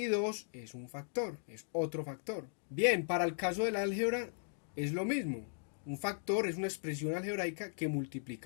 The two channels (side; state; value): right; silent; digital silence